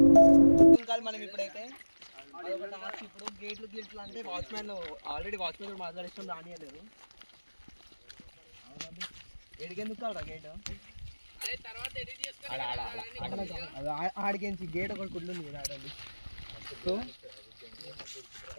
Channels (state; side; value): inverted; both; correlation -1.00